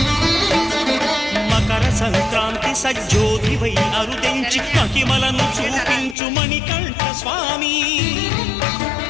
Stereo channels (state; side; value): drops out; right; at 6.2 s